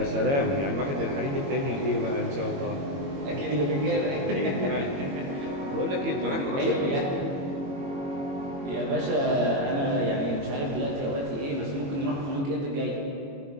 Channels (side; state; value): left; late; 22 ms